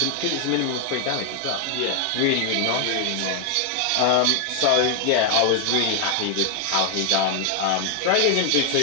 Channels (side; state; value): both; different; correlation 0.00